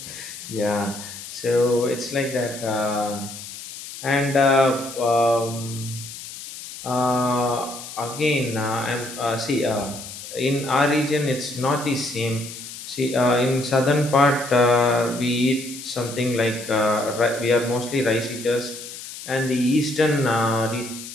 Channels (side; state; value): left; noise; hiss, 12 dB below the sound